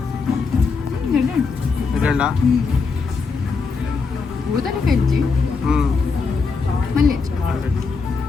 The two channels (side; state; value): right; quieter; 4.7 dB